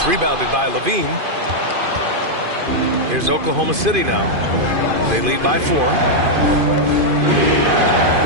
rebounded by Levine. Here's Oklahoma City now. They lead by 4.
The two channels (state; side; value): late; left; 2.5 ms